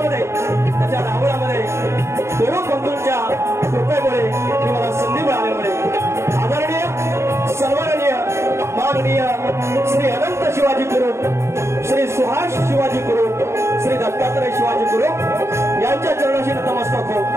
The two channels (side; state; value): left; late; 0.13 ms